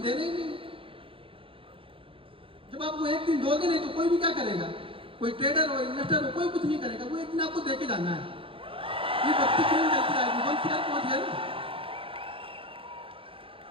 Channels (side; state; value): left; late; 0.26 ms